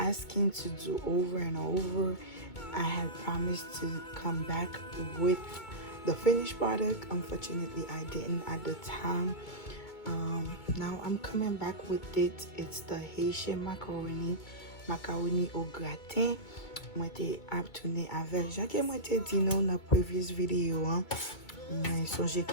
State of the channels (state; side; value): late; right; 2.2 ms